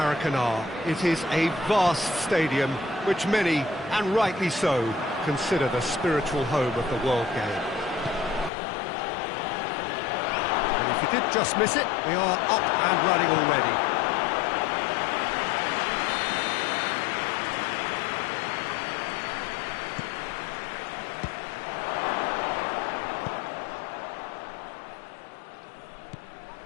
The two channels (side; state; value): right; drops out; at 8.5 s